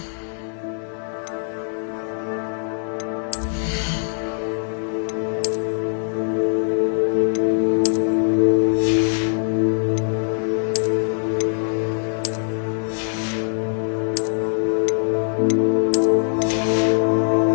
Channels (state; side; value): silent; right; digital silence